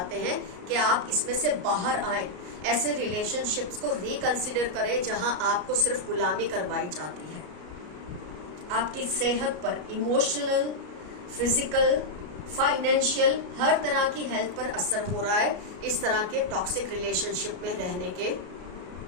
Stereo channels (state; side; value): late; left; 33 ms